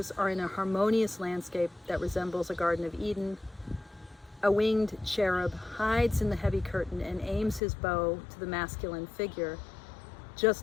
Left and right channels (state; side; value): drops out; right; at 7.6 s